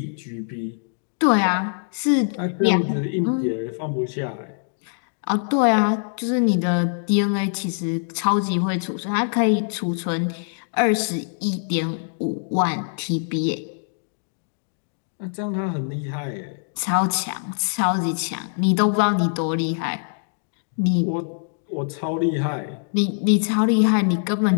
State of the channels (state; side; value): silent; right; digital silence